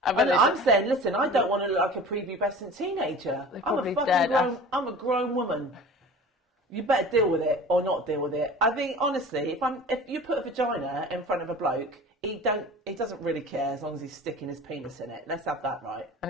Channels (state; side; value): normal; both; correlation 0.40